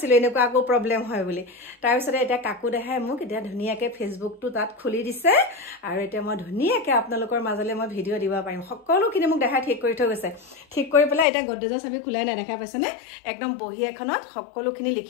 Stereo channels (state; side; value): drops out; right; at 11.2 s